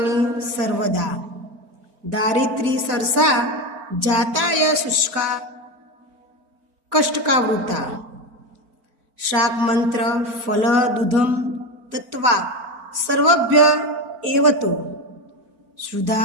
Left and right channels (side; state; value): left; late; 4.4 ms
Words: सर्वदा दारिद्री सरसा जाताय शुष्का कष्टकावृता शाक मंत्र फल दूधम तत्वा सर्वभ्य एवतो